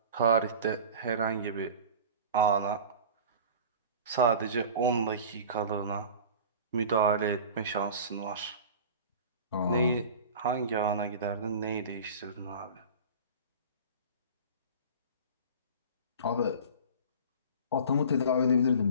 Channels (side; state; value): both; inverted; correlation -0.38